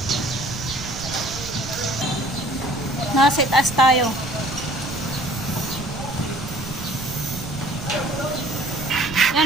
Nasa itaas tayo.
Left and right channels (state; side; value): noise; right; rumble, 12 dB below the sound